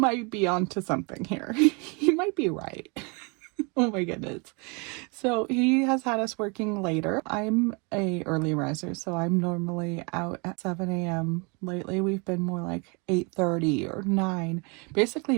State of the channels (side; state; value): left; quieter; 31.5 dB